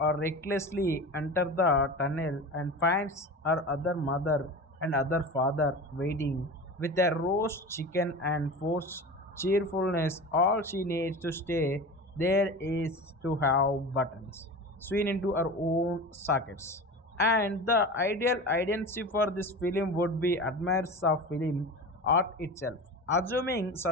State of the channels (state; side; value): normal; both; correlation 0.31